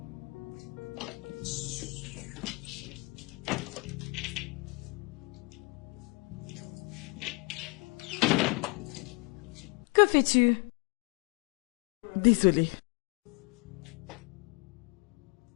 Que fais-tu? Désolée.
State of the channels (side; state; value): right; quieter; 29.1 dB